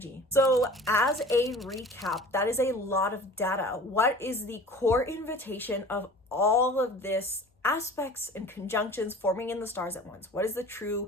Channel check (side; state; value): both; normal; correlation 0.43